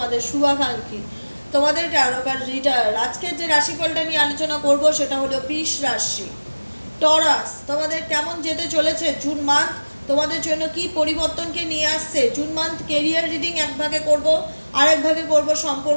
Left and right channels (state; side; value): inverted; both; correlation -1.00